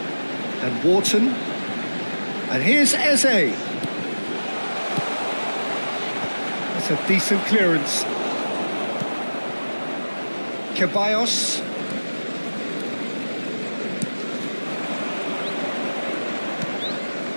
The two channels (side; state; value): both; inverted; correlation -1.00